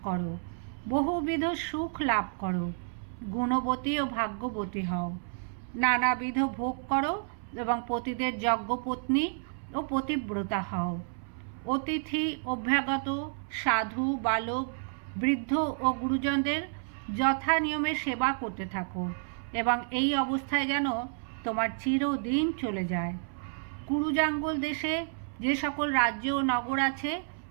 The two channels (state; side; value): silent; left; 58 dB below the other